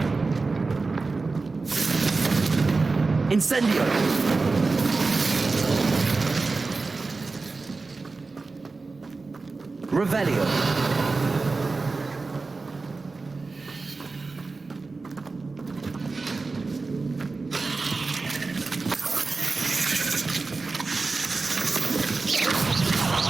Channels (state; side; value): quieter; left; 3.9 dB